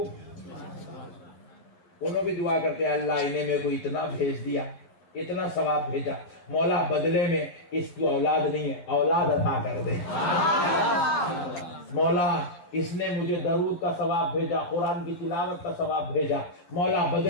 انہوں بھی دعا کرتے ہیں اللہ انہیں میں کو اتنا بھیج دیا، اتنا ثواب بھیجا، مولا بدلے میں اس کو اولاد نہیں ہے، اولاد عطا کر دے، مولا اس نے مجھے درود کا ثواب بھیجا، قرآن کی تلاوت کا ثواب بھیجا، مولا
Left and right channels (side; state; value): right; late; 11 ms